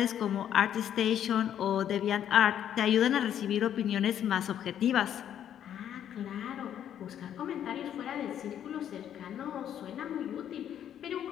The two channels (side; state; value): right; quieter; 10.0 dB